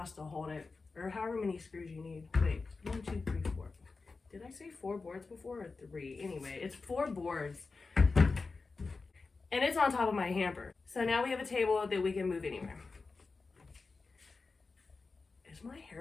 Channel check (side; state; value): right; quieter; 4.1 dB